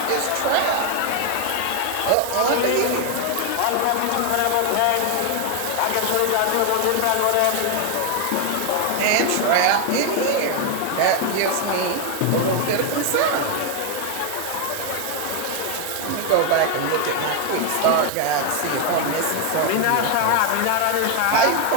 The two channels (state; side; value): different; both; correlation 0.01